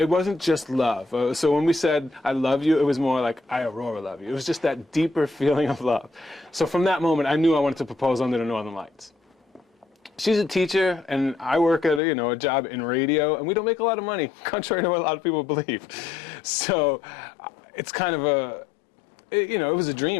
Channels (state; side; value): drops out; right; at 12.0 s